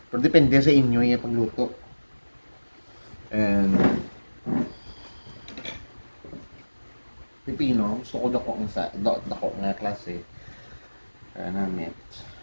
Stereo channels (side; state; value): both; inverted; correlation -1.00